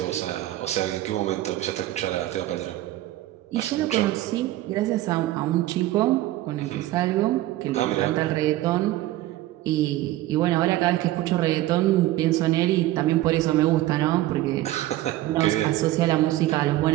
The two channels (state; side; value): quieter; left; 15.7 dB